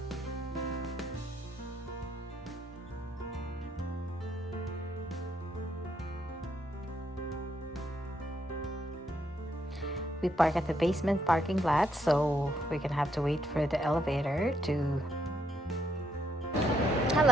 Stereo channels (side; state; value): both; normal; correlation 0.75